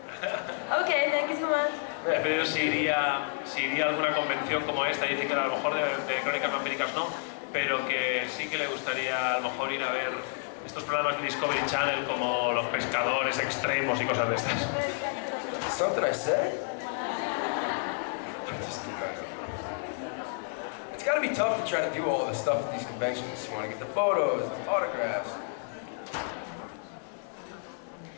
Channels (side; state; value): right; silent; 58 dB below the other